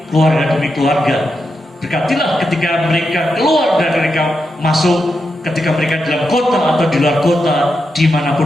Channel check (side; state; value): both; normal; correlation 0.86